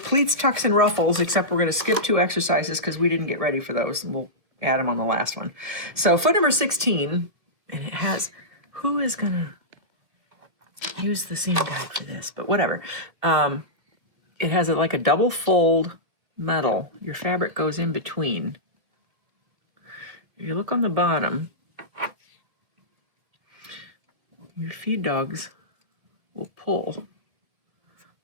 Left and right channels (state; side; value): late; left; 1.5 ms